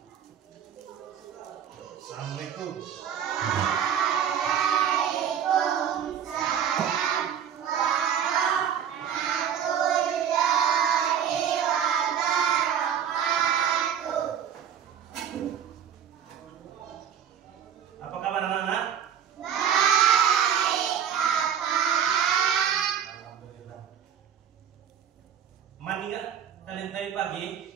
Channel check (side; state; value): left; quieter; 8.7 dB